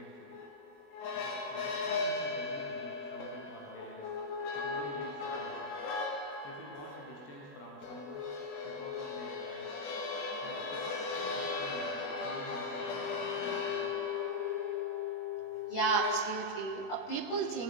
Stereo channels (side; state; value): right; late; 21 ms